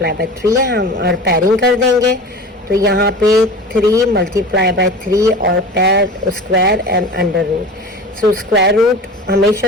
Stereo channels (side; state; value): both; normal; correlation 0.35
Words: by 3 है हम, और पेयरिंग कर देंगे. तो यहाँ पे 3 मल्टीप्लाई बाय 3 और pair square and under root. So square root